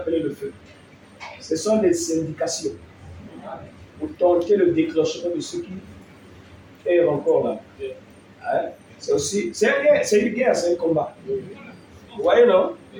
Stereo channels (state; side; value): identical; both; correlation 1.00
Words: le feu. Ce sont des indications pour tenter le déclenchement de ce qui est encore là. Hein? C'est aussi, c'est une guerre, c'est un combat. Vous voyez, non?